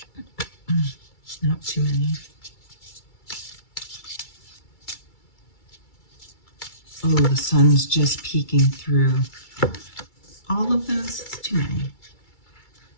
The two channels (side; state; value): right; late; 2.3 ms